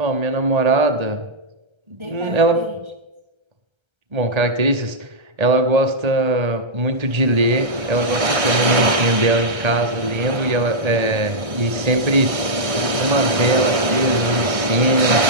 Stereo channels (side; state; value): left; late; 1.3 ms